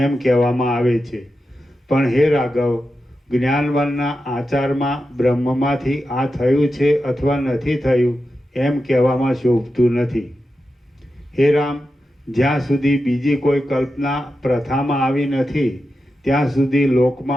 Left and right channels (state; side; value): normal; both; correlation 0.90